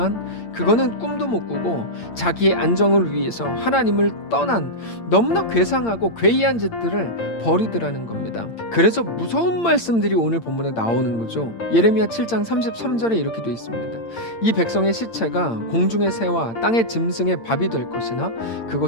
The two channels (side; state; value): right; late; 8.8 ms